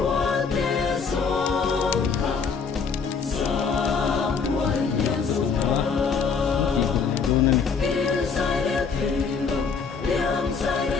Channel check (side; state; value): right; quieter; 5.5 dB